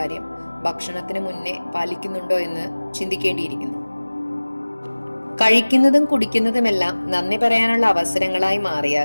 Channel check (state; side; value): inverted; both; correlation -1.00